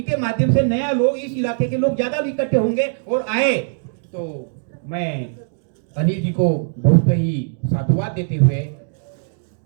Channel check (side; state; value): left; silent; digital silence